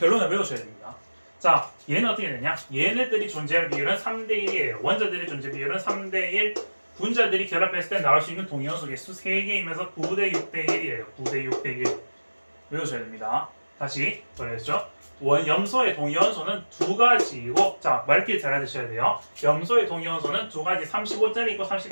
외우셔야 됩니다. 자, 얘는 어떻게 되냐? 얘네들이 존재할 비율은 3대1이에요. 원자들의 존재 비율은 3대1, 분자들이 결합했을 때 나올 수 있는 동위원소 개수 3개이면서 9대 6대 1이에요. 9대 6대 1 외우셔야 됩니다. 다시 그랬죠? 염소의 동위원소는 두 가지이고, 자, 말길 잘 알아두셔야 돼요. 염소의 동위원소는 두 가지 35짜리 있고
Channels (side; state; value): both; inverted; correlation -1.00